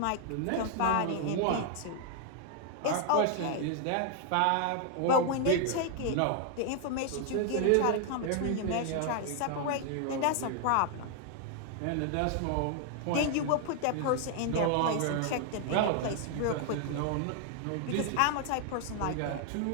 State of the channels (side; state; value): both; different; correlation 0.00